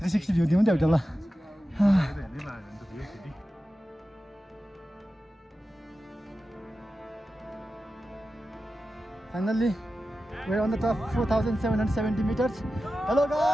360 भ्यू दिउँ नि त एउटा ल finally we're on the top 4,770 meters. Hello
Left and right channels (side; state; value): both; normal; correlation 0.93